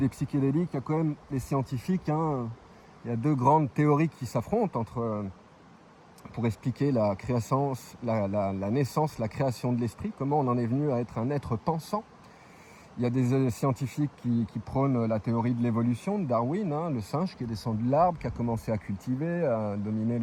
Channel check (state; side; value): identical; both; correlation 1.00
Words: psychédéliques, il y a quand même les scientifiques. Hein, il y a deux grandes théories qui s'affrontent pour expliquer la naissance, la création de l'esprit, comment on en est venu à être un être pensant. Il y a des scientifiques qui prônent la théorie de l'évolution de Darwin, hein, le singe qui est descendu de l'arbre, qui a commencé à cultiver, à dominer